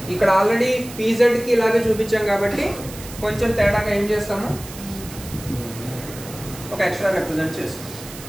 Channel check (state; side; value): noise; right; hiss, 15 dB below the sound